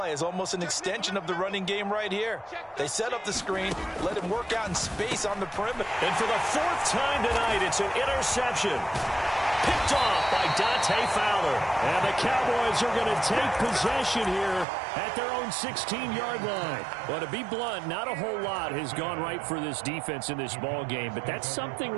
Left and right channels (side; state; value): left; drops out; at 14.7 s